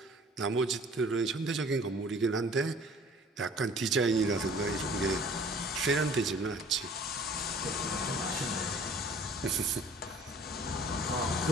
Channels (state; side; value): normal; both; correlation 0.51